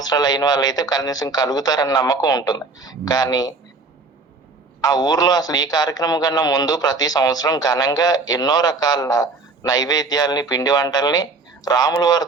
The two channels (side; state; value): left; quieter; 3.8 dB